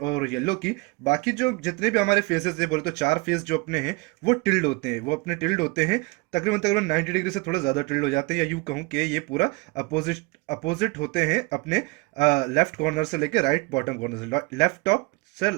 और येलो की। बाकी जो जितने भी हमारे फेसेस है, बोले तो 4 फेस जो अपने हैं वो टिल्ड होते हैं, वो अपने टिल्ड होते हैं। तकरीबन तकरीबन 90 डिग्री से थोड़ा ज़्यादा टिल्ड हो जाते हैं, या यूँ कहूँ कि ये पूरा अपोजिट अपोजिट होते हैं अपने लेफ्ट कॉर्नर से लेके राइट बॉटम कॉर्नर से, लेफ्ट टॉप से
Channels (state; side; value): quieter; left; 26.0 dB